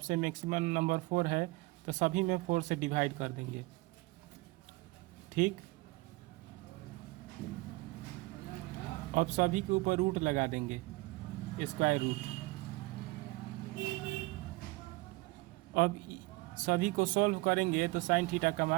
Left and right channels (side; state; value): left; quieter; 22.8 dB